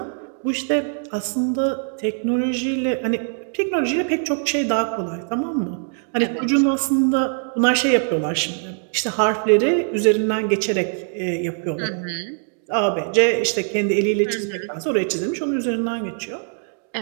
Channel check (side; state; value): left; silent; 59 dB below the other